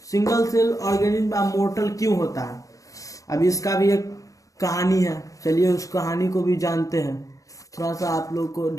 Single cell organism are mortal क्यों होता है, अब इसका भी एक कहानी है। चलिए उस कहानी को भी जानते हैं। थोड़ा सा आप लोग को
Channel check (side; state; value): right; late; 0.16 ms